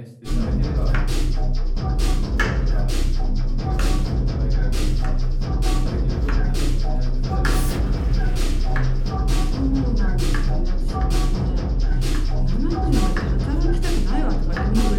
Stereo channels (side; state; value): both; identical; correlation 1.00